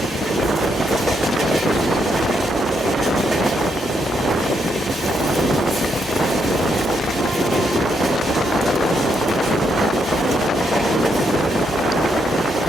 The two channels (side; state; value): both; normal; correlation 0.78